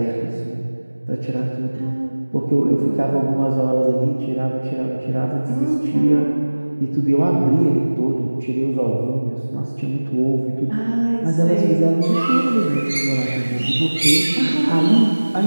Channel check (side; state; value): both; inverted; correlation -1.00